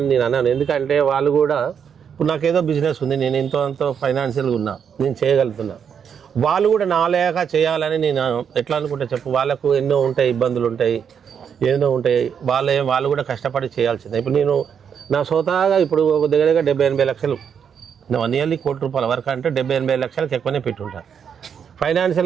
నేను అన్నాను. ఎందుకంటే వాళ్ళు కూడా ఇప్పుడు నాకేదో బిజినెస్ ఉంది, నేను ఎంతో ఫైనాన్షియల్గా ఉన్నా, నేను చేయగలుగుతున్నా. వాళ్ళు కూడా నా లేక చేయాలని నేను ఎట్లా అనుకుంటా చెప్పు. వాళ్ళకు ఎన్నో ఉంటాయి, ఇబ్బందులు ఉంటాయి, ఎన్నో ఉంటాయి. వాళ్ళు కూడా కష్టపడి చేయాల్సిందే. ఇప్పుడు నేను నా సొంతగా ఇప్పుడు ఒక దగ్గర 70-80 లక్షలు, నియర్లీ ₹1,00,00,000 వరకు అంటే 70-80 లక్షలకు ఎక్కువనే పెట్టుంటాను.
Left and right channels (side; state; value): left; quieter; 7.5 dB